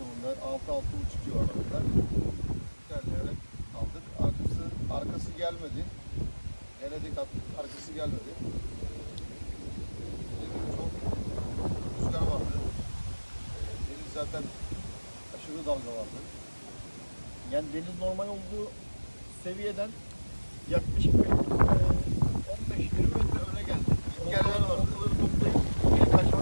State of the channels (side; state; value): both; inverted; correlation -1.00